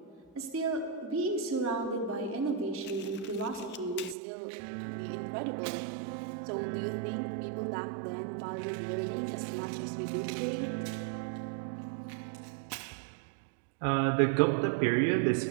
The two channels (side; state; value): left; drops out; at 4.2 s